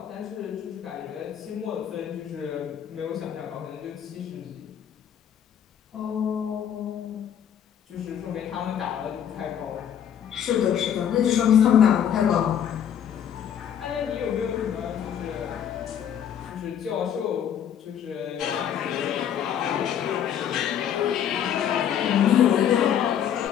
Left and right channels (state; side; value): quieter; right; 9.2 dB